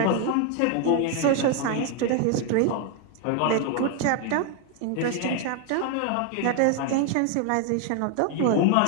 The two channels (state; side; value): different; both; correlation 0.01